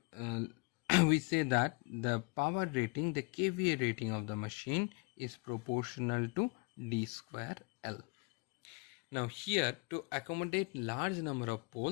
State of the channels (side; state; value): right; quieter; 30.5 dB